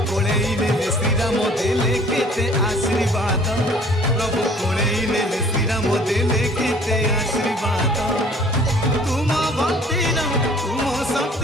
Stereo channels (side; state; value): both; normal; correlation 0.53